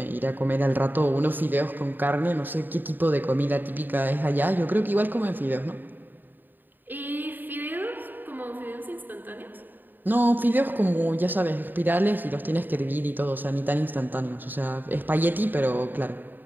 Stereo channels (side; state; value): left; late; 0.091 ms